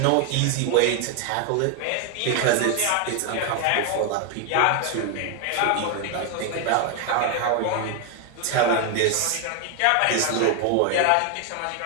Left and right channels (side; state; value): both; different; correlation 0.01